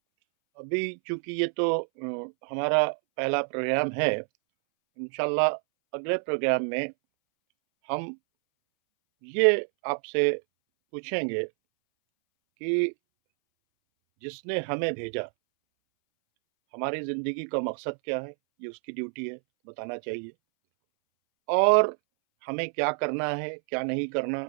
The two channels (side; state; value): left; silent; 60 dB below the other